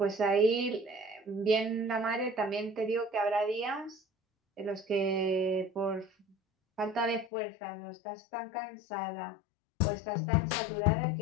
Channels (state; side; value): drops out; right; at 7.2 s